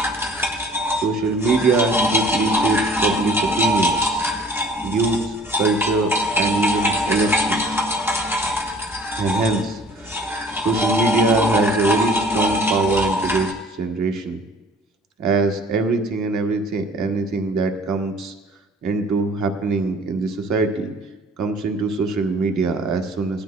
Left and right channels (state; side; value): normal; both; correlation 0.51